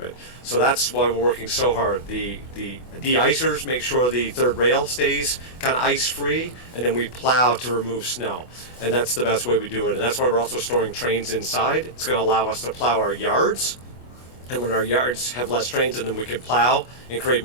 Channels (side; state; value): right; late; 24 ms